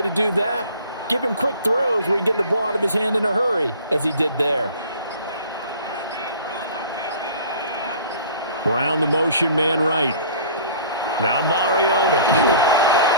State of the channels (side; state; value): both; inverted; correlation -0.47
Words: to do that, give him quick throws where he can get the ball out of his hand in a hurry, as he did there. Brown the motion man right. Now Mariota.